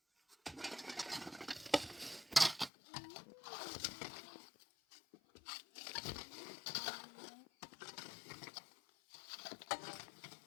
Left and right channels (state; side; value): drops out; right; at 2.7 s